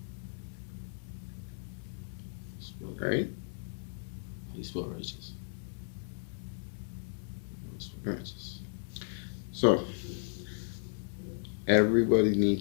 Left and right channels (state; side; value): silent; right; digital silence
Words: Right? How you spell righteous? How you spell Right. righteous? So, everybody